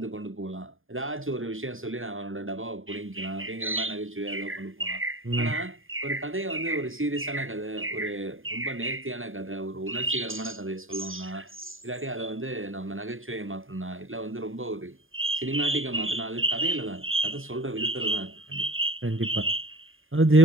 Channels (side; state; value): left; late; 0.59 ms